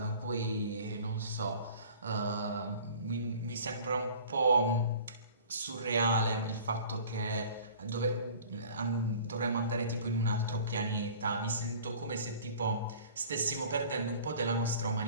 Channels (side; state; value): both; inverted; correlation -0.46